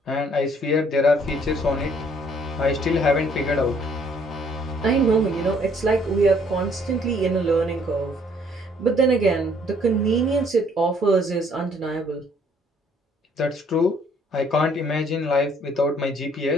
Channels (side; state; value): both; normal; correlation 0.63